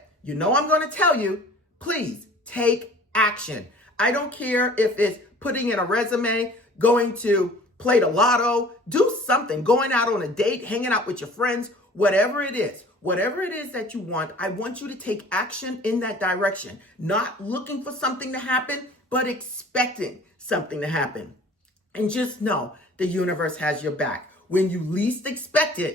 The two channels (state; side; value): normal; both; correlation 0.48